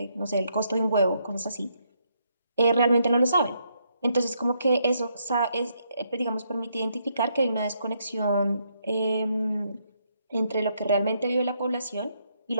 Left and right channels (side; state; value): both; inverted; correlation -0.75